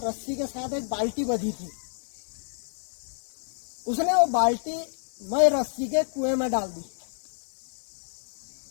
के साथ एक बाल्टी बंधी थी। उसने वो बाल्टी मई रस्सी के कुएं में डाल दी,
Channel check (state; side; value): silent; right; 59 dB below the other